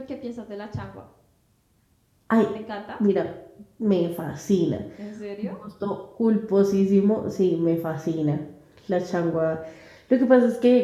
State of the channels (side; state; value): both; identical; correlation 1.00